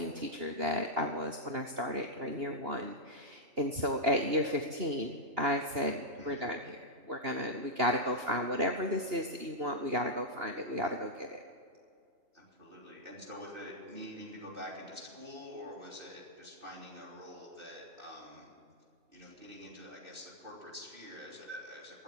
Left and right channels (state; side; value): late; left; 2.8 ms